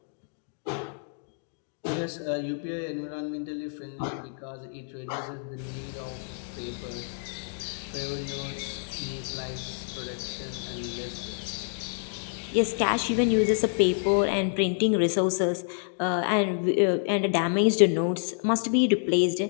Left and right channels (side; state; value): right; silent; digital silence